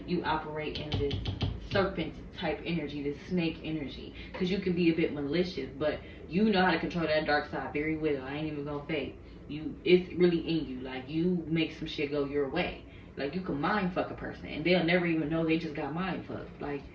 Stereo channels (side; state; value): both; identical; correlation 1.00